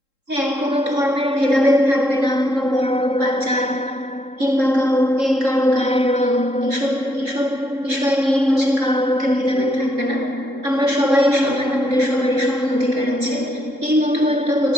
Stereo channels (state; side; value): late; left; 3.7 ms